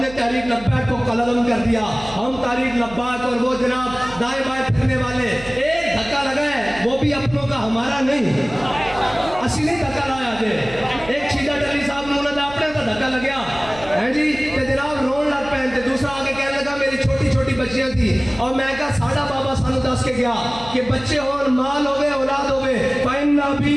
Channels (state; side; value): noise; right; hum, 16 dB below the sound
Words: نے تحریک لبیک کو قلم کر دیا، ہم تحریک لبیک، اور وہ جناب دائیں بائیں پھرنے والے، ایک دھکا لگا ہے وہ بھی اپنوں کا ہمارا نہیں، اصلی دھکا لایا جے. ایک شیدہ ڈلی صاحب نے انہوں نے اپنے کا دھکا لگیا ہے جی کہ جناب رون لگ پہنتے. دوسرا آگے کہنے لگا میری چھوٹی چھوٹی بچیاں تھی، اور میں کہا ساڑھا بابا سانو دس کے گیا کہ بچے ہون، مال ہوئے، اولاد ہوئے، فَإِنَّ